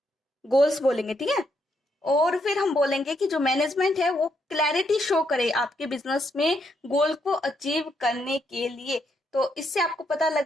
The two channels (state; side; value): normal; both; correlation 0.77